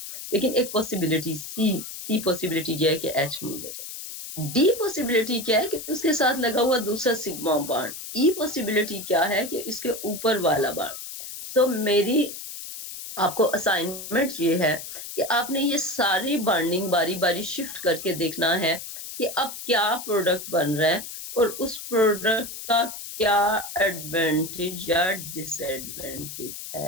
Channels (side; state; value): left; noise; hiss, 10 dB below the sound